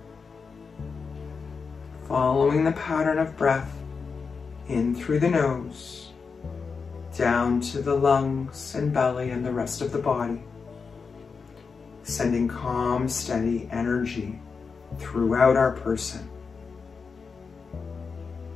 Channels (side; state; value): right; quieter; 5.2 dB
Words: Following the pattern of breath in through the nose, down to the lungs and belly and the rest of the body, sending calm, steady energy throughout our person.